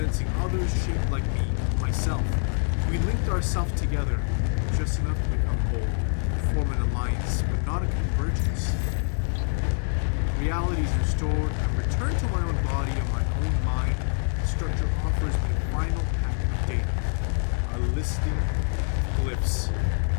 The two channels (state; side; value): silent; right; 61 dB below the other